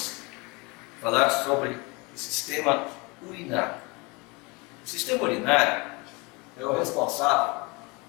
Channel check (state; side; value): quieter; right; 27.2 dB